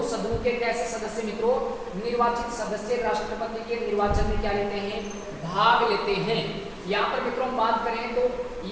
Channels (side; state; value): both; identical; correlation 1.00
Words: सदनों के कैसे सदस्य मित्रों, निर्वाचित सदस्य राष्ट्रपति के निर्वाचन में क्या लेते हैं, भाग लेते हैं। यहाँ पर मित्रों हम बात करें तो